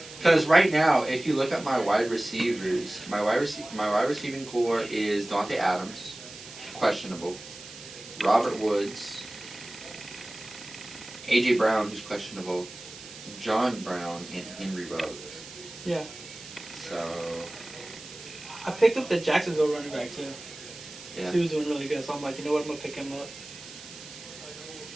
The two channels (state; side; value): noise; right; hiss, 15 dB below the sound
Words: Because right now, if you look at my wide receivers, my wide receiving core is Dante Adams, questionable, Robert Woods, A.J. Brown, who's questionable, John Brown, and Henry Ruggs. Yeah. So, I picked up the Jacksonville running back too. yeah. He was doing really good, so I'm like, you know what, I'm gonna pick him up.